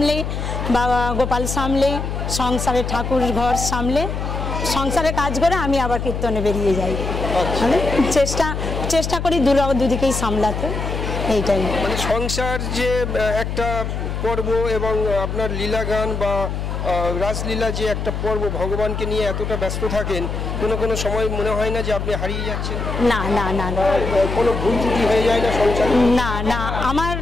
বাবা গোপাল সামলে, সংসারে ঠাকুর ঘর সামলে, সংসারে কাজ করে আমি আবার কীর্তনে বেরিয়ে যাই। মানে চেষ্টা করি দুদিকেই সামলাতে, এইটাই। মানে সংসার যে একটা পর্ব এবং আপনার লীলা গান বা রাসলীলা যে একটা পর্ব, ভগবানকে নিয়ে এতটা ব্যস্ত থাকেন, কোনো সময় মনে হয় না যে আপনি হারিয়ে যাচ্ছেন? না না না না, কোনো ভুল ত্রুটি হয়ে যায় না সংসারে? না না, আমার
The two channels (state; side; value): noise; left; hum, 4 dB below the sound